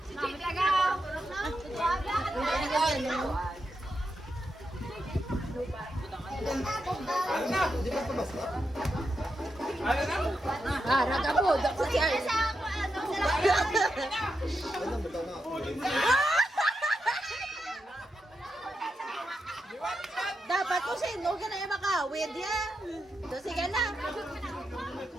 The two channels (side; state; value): both; normal; correlation 0.85